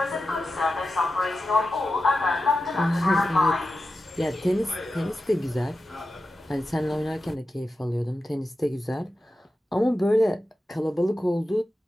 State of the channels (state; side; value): normal; both; correlation 0.91